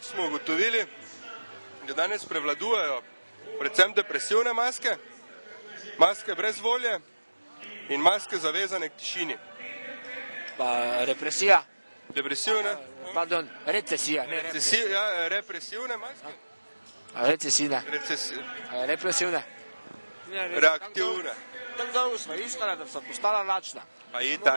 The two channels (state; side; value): inverted; both; correlation -1.00